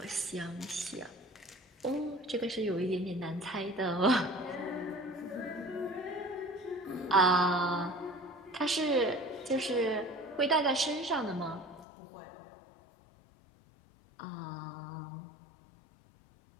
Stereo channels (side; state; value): right; drops out; at 11.9 s